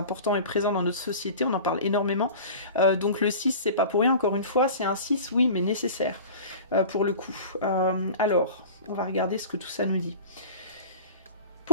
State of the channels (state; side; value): inverted; both; correlation -0.38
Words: et présent dans notre société, on en parle énormément. Donc le 6, c'est pas pour rien, encore une fois, c'est un 6, oui, mais nécessaire pour le coup. Alors, on va regarder ce que tout ça nous dit.